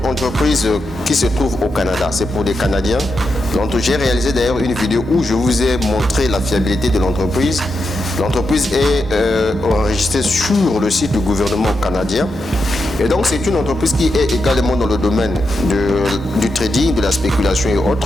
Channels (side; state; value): both; normal; correlation 0.86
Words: entreprise qui se trouve au Canada. C'est pour des Canadiens. J'ai réalisé d'ailleurs une vidéo où je vous ai montré la fiabilité de l'entreprise. L'entreprise est enregistrée sur le site du gouvernement canadien. Et donc c'est une entreprise qui est également dans le domaine du trading, de la spéculation et